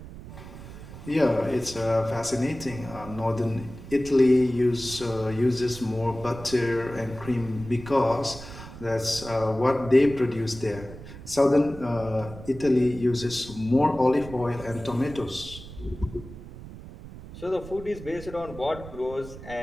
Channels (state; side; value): noise; right; rumble, 14 dB below the sound